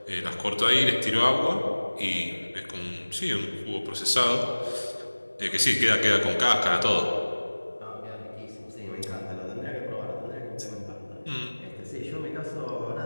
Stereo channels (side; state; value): both; inverted; correlation -1.00